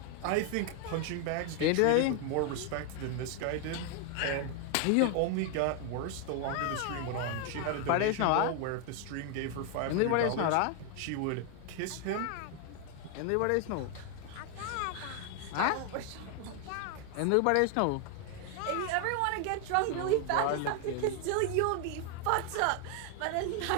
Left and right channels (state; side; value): different; both; correlation 0.00